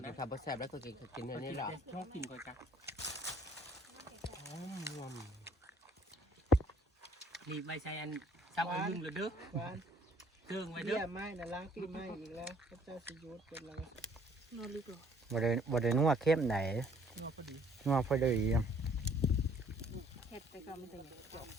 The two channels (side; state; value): both; normal; correlation 0.60